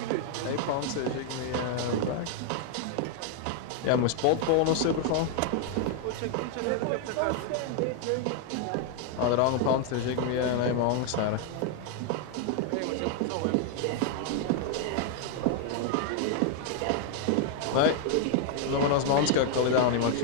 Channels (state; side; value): different; both; correlation 0.00